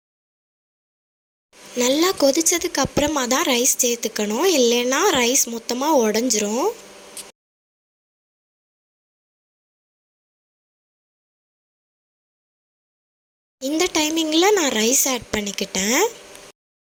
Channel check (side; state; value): both; identical; correlation 1.00